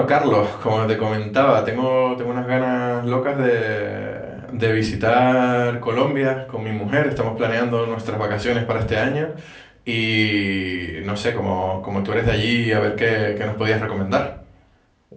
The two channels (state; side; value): identical; both; correlation 1.00